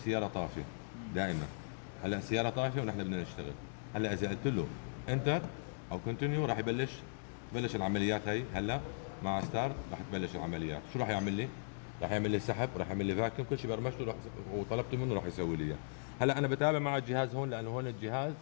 طافيه دائما. هلا السياره طافيه ونحن بدنا نشتغل. هلا اذا قلت له انتر او كونتينيو راح تبلش العمليات هي. هلا مع ستارت راح تبلش العمليات. شو راح يعمل لي؟ راح يعمل لي سحب، راح يعمل لي فاكيوم، كل شيء برمجته وطلبته منه راح يسوي لي اياه. هلا انا بتابع مع الجهاز هون، لانه هون الجهاز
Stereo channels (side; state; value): right; silent; digital silence